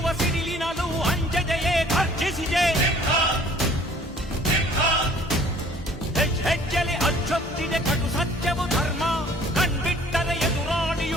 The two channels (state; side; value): normal; both; correlation 0.54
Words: ಸಿಡಿಲಿನಲ್ಲೂ ಅಂಜದೆಯೇ ಗರ್ಜಿಸಿದೆ. ಹೆಜ್ಜೆಲೆ ಅಚ್ಚೊತ್ತಿದೆ ಕಟು ಸತ್ಯವು ಧರ್ಮ, ಕಣ್ಬಿಟ್ಟರೆ